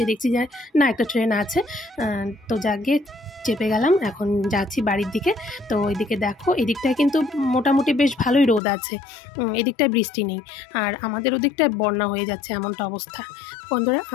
দেখছি যে না, একটা ট্রেন আছে। তো যাকে চেপে গেলাম, এখন যাচ্ছি বাড়ির দিকে। তো ওইদিকে দেখো, এদিকটায় কিন্তু মোটামুটি বেশ ভালোই রোদ আছে, এদিকটায় বৃষ্টি নেই। আর আমাদের ওদিকটায় বন্যা হয়ে যাচ্ছে, এমনটা অবস্থা। বন্ধুরা,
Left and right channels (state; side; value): drops out; right; at 8.6 s